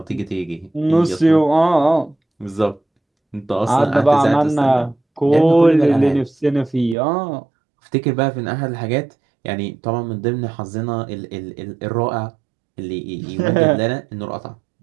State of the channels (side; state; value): left; drops out; at 7.0 s